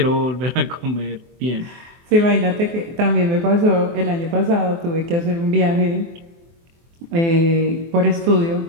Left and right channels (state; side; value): late; left; 24 ms